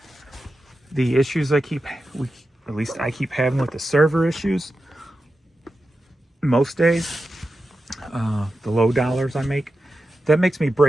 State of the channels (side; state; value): both; normal; correlation 0.91